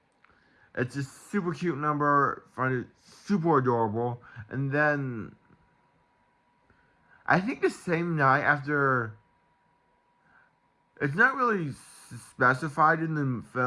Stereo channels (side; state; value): both; identical; correlation 1.00